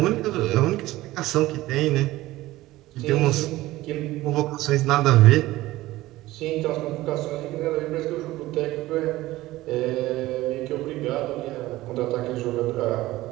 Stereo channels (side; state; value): left; quieter; 17.3 dB